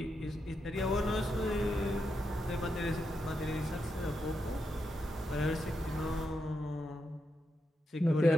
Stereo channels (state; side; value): normal; both; correlation 0.84